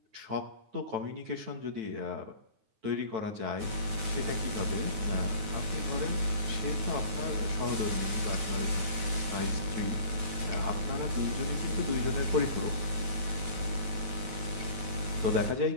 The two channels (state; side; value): late; left; 9.2 ms